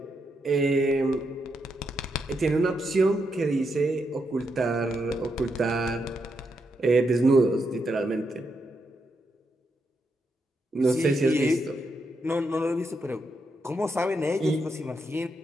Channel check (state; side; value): normal; both; correlation 0.82